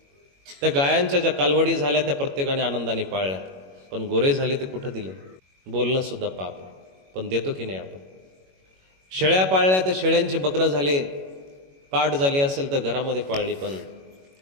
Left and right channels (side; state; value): left; late; 21 ms